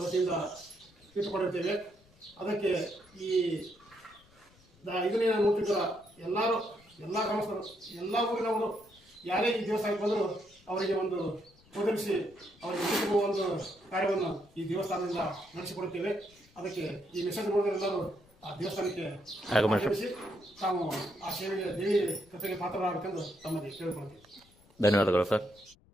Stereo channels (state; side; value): noise; left; rumble, 29 dB below the sound